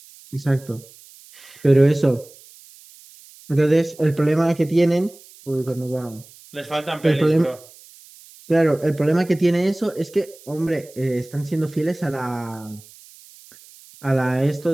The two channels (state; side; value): noise; right; hiss, 23 dB below the sound